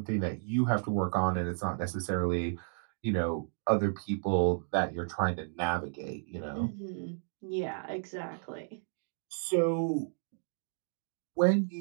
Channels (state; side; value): silent; left; digital silence